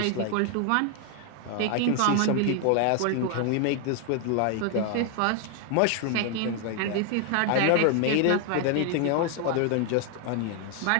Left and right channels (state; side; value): different; both; correlation 0.01